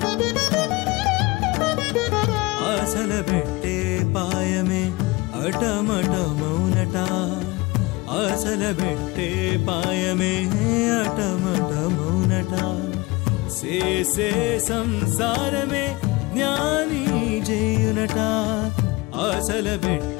ఆశల పెట్టే పాయమే అటమటమౌనట, ఆశల పెట్టే పాయమే అటమటమౌనట. చేసే సంసారమే జ్ఞాని చేయునట, ఆశల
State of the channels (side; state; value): right; quieter; 23.0 dB